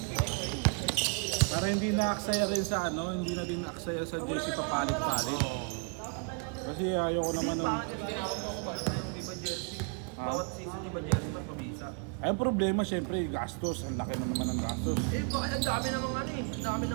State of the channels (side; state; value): left; quieter; 36.8 dB